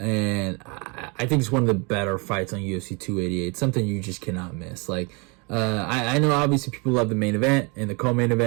I think it's one of the better fights on UFC 288. Something you just cannot miss. I know obviously people love the main event and the co-main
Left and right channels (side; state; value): left; quieter; 31.2 dB